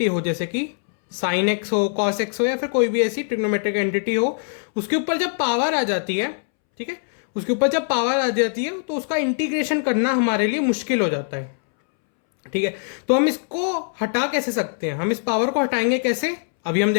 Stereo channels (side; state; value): right; silent; 64 dB below the other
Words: हो, जैसे कि साइन एक्स हो, कॉस एक्स हो, या फिर कोई भी ऐसी ट्रिग्नोमेट्रिक एंटिटी हो, उसके ऊपर जब पावर आ जाती है, ठीक है, उसके ऊपर जब पावर आ जाती है तो उसका इंटीग्रेशन करना हमारे लिए मुश्किल हो जाता है। ठीक है, तो हम इसको हटा कैसे सकते हैं, हम इस पावर को हटाएंगे कैसे, अभी हम